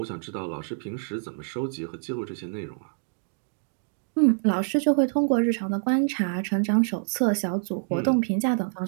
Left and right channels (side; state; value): left; silent; digital silence